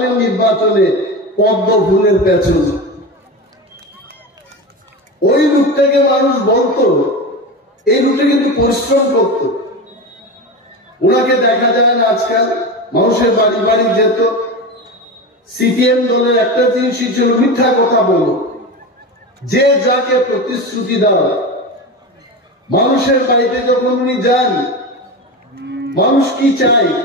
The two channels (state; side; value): normal; both; correlation 0.23